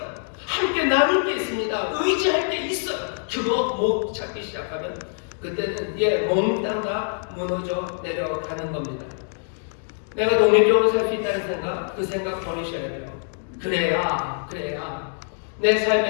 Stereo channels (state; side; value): silent; right; digital silence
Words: 함께 나눌 게 있습니다. 의지할 게 있어요. 그거 못 찾기 시작하면 그때는 몽땅 다 무너져 내려가는 겁니다. 내가 독립적으로 살 수 있다는 생각, 그 생각 버리셔야 돼요. 그래야 내